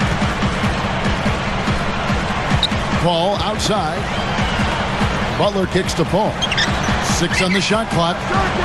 Paul outside. Butler kicks to Paul. 6 on the shot clock.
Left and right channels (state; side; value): identical; both; correlation 1.00